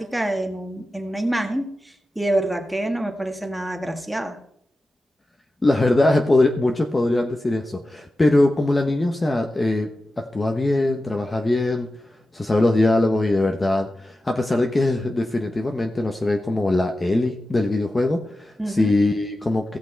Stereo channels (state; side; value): normal; both; correlation 0.93